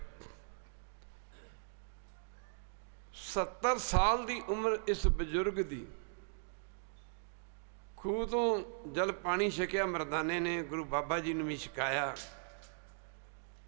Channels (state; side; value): silent; left; digital silence